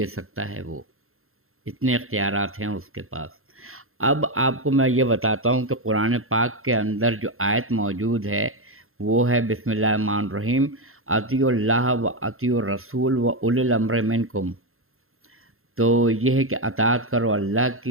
سکتا ہے، وہ اتنے اختیارات ہیں اس کے پاس۔ اب آپ کو میں یہ بتاتا ہوں کہ قرآن پاک کے اندر جو آیت موجود ہے وہ ہے بسم اللہ الرحمن الرحیم، اطیعوا اللہ و اطیعوا الرسول و اولی الامر منکم۔ تو یہ ہے کہ اطاعت کرو اللہ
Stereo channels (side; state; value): left; late; 0.62 ms